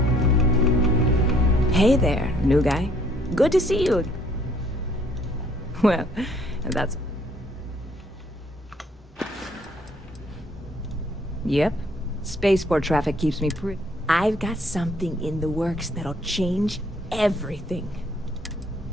Hey there, new guy. Good to see you. Well, that's... Yep. Spaceport traffic keeps me pretty... I've got something in the works that'll change everything.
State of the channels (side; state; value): both; normal; correlation 0.63